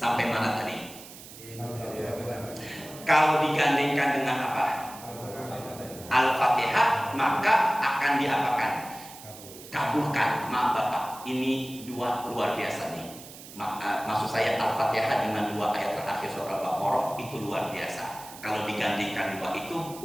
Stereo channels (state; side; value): noise; right; hiss, 16 dB below the sound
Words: mana tadi? Kalau digandengkan dengan apa? Al-Fatihah, maka akan diapakan? Kabulkan. Maaf Bapak, ini dua luar biasa nih. Maksud saya Al-Fatihah dengan dua ayat terakhir surah Al-Baqarah itu luar biasa. Kalau digandingkan dua itu